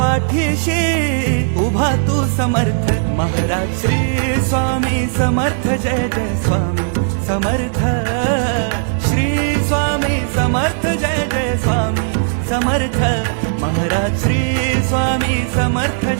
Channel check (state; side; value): silent; left; digital silence